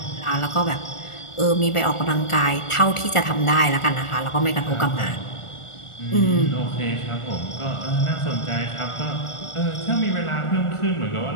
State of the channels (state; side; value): late; right; 1.4 ms